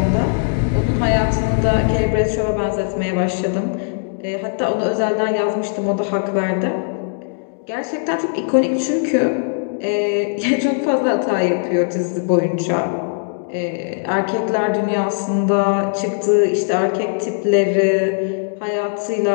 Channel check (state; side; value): silent; right; digital silence